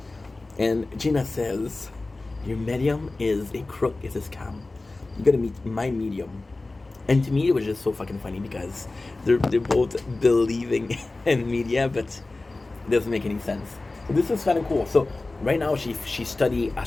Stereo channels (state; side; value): quieter; right; 3.2 dB